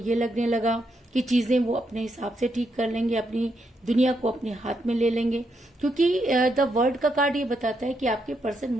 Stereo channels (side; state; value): both; normal; correlation 0.80